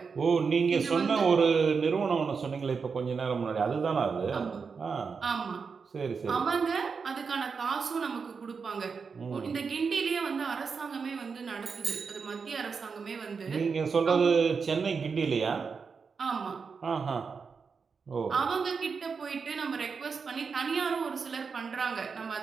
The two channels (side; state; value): left; quieter; 5.4 dB